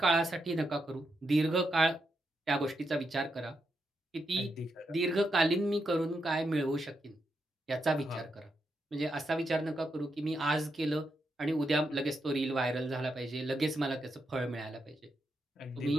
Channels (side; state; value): both; normal; correlation 0.83